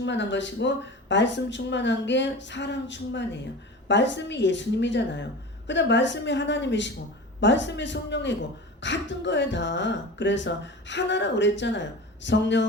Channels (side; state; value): both; normal; correlation 0.33